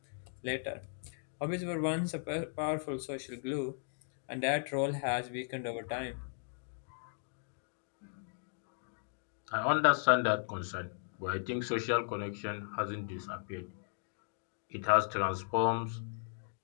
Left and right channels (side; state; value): right; silent; digital silence